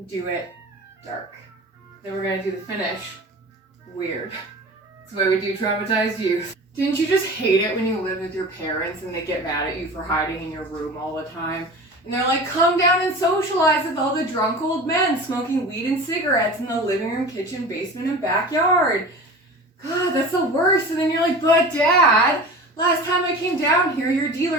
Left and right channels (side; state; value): both; normal; correlation 0.36